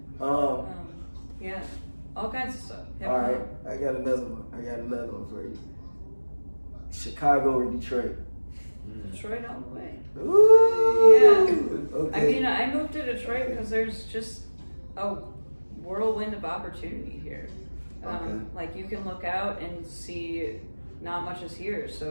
Yeah, all kinds of stuff. All right, I got another one for you. Chicago or Detroit? Detroit all the way. Ooh. Yeah. Okay. I mean, I moved to Detroit because there's just a whirlwind of opportunity here. Like you can look out and see not much is here, so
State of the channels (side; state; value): both; inverted; correlation -1.00